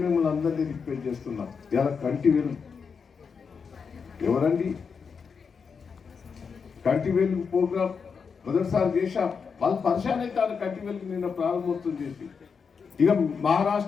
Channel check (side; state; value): right; quieter; 5.8 dB